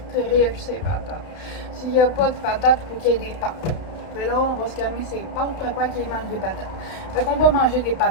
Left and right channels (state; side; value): late; right; 31 ms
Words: trippent ces patates. S'il n'y a pas de patates, il faut qu'il y ait des pâtes. Puis là, on va se calmer ces pâtes, préfère qu'ils mangent des patates. Fait qu'on va manger des